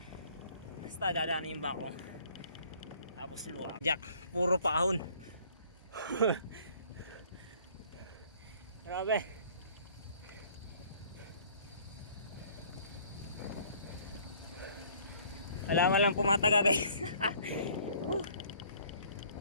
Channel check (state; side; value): inverted; both; correlation -0.56